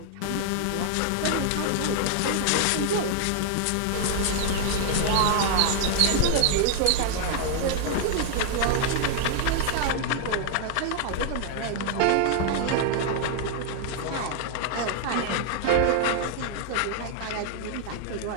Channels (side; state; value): both; different; correlation 0.00